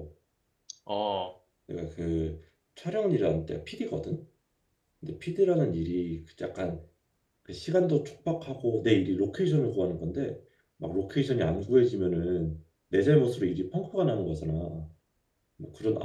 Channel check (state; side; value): identical; both; correlation 1.00